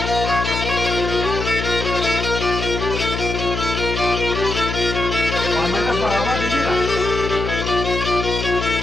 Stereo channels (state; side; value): noise; left; hum, 4 dB below the sound